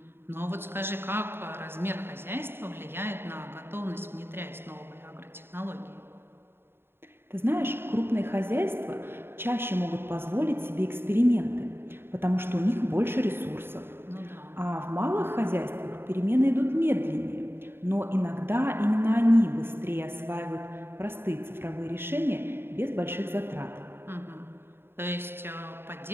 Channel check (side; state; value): left; late; 0.11 ms